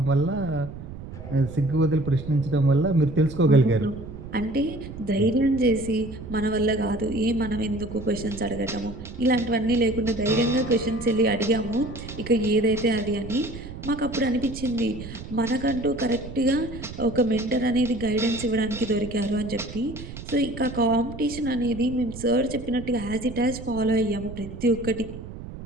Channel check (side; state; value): right; noise; rumble, 12 dB below the sound